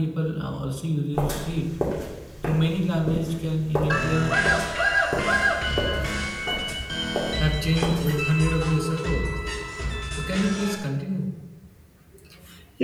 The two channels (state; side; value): identical; both; correlation 1.00